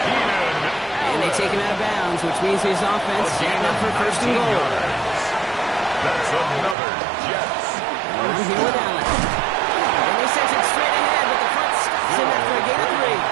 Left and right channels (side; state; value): left; drops out; at 6.8 s